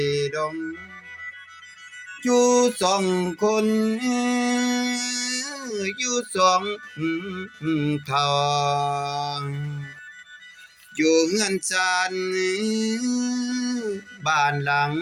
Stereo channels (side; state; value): both; identical; correlation 1.00